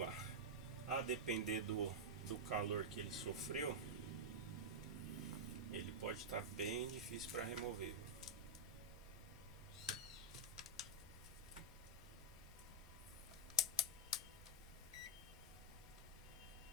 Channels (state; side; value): normal; both; correlation -0.06